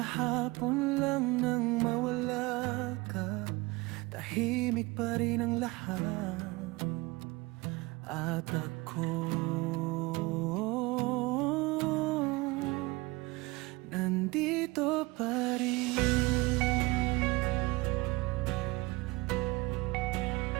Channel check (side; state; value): left; quieter; 23.3 dB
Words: lang nang mawala ka. Tahimik pa rin ang lahat, at ako nandito pa rin.